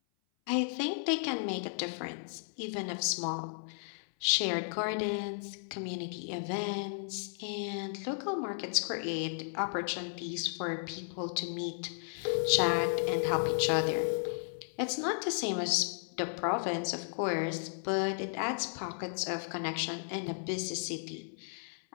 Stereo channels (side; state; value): right; silent; 55 dB below the other